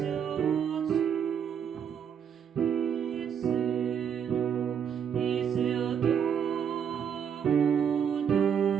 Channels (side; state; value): left; quieter; 7.9 dB